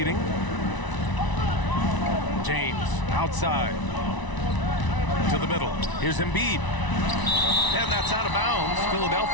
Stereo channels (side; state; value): right; late; 1.0 ms